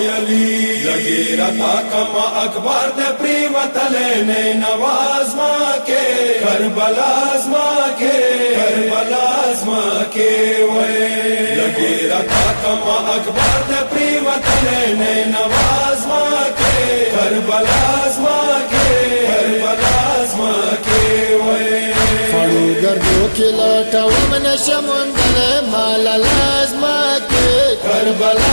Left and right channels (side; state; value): both; inverted; correlation -1.00